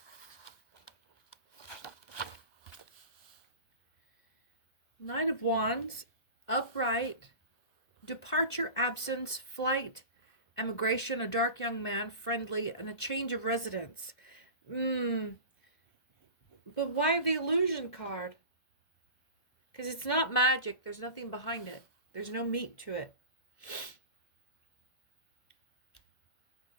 Knight of Wands, upright, departure, absence, flight, emigration, a dark young man, friendly, and a change of residence. But why the illusion card? Because it's not magic. There's nothing behind it. There's no meat to it.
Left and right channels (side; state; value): right; late; 1.7 ms